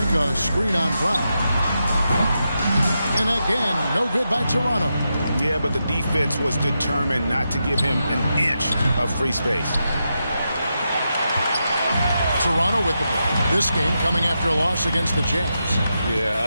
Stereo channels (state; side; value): inverted; both; correlation -0.86